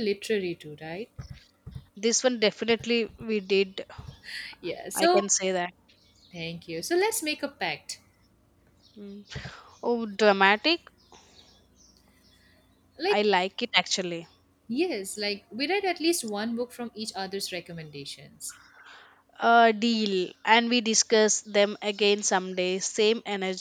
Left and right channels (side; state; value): both; identical; correlation 1.00